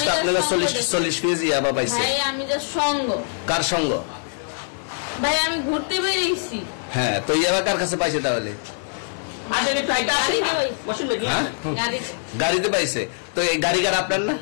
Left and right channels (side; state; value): right; silent; 63 dB below the other